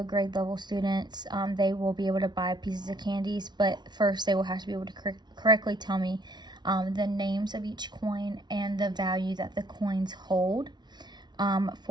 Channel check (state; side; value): late; left; 0.20 ms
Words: grade level students, they will be able to buy pieces of candies, but first they will have to be able to correctly tell me the names of each coin and the value that the coins hold.